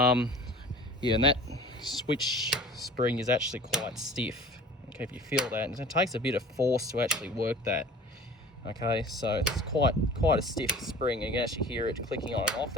and that switch spring is actually quite stiff. Okay, if you feel that, and it takes a bit of force to actually work that. Okay, so it's quite a stiff spring, and you can actually hear it clicking on and off.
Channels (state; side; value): normal; both; correlation 0.43